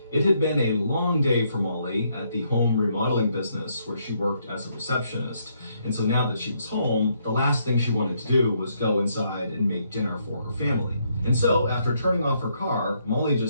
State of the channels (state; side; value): inverted; both; correlation -0.74